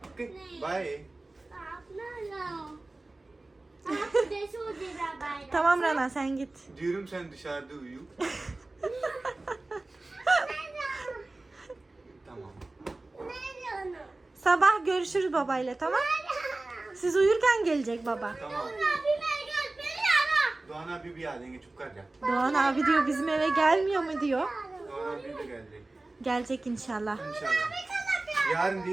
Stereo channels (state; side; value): quieter; left; 3.0 dB